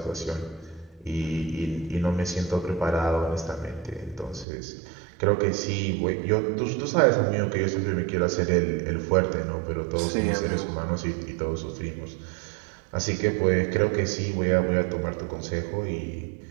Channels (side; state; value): left; drops out; at 4.5 s